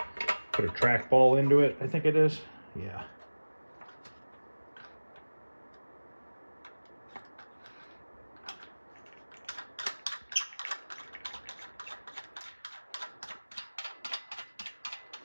put a trackball into it, I think it is. Yeah.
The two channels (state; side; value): inverted; both; correlation -1.00